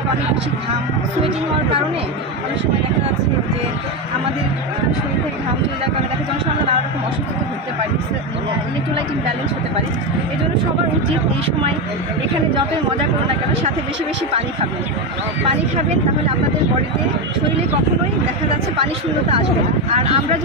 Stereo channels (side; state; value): both; normal; correlation 0.12